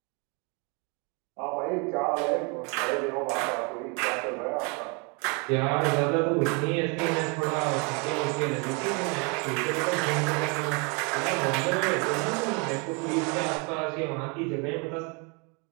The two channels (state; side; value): quieter; left; 32.6 dB